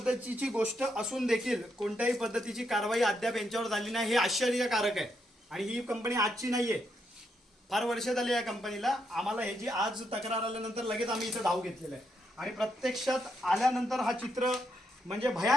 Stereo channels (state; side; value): normal; both; correlation 0.79